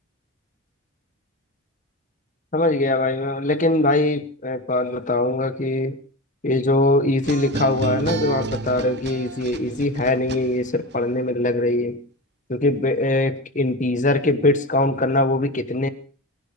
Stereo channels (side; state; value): both; normal; correlation 0.24